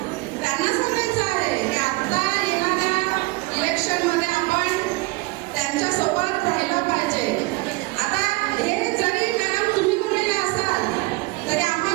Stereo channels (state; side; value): quieter; left; 23.2 dB